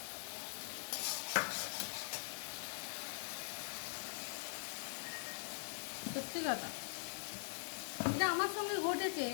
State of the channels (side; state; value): right; silent; digital silence